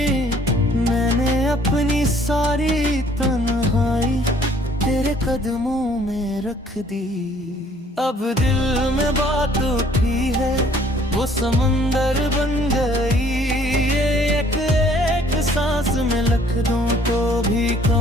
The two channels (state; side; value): normal; both; correlation 0.59